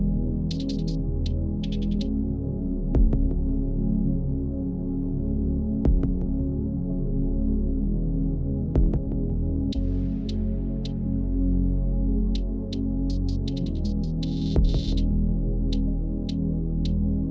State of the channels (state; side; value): identical; both; correlation 1.00